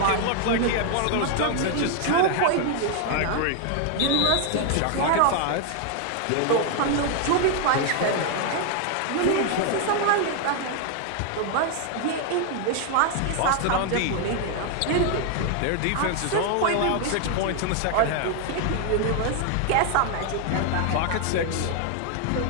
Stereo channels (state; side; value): different; both; correlation 0.00